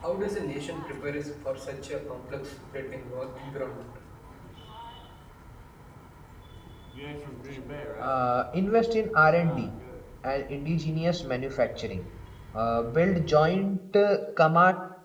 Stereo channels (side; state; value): both; identical; correlation 1.00